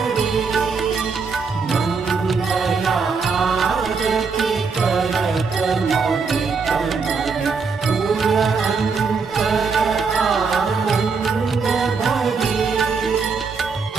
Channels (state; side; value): quieter; left; 5.0 dB